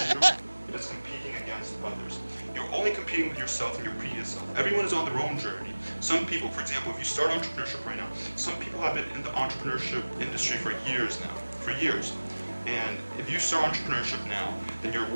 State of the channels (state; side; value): inverted; both; correlation -1.00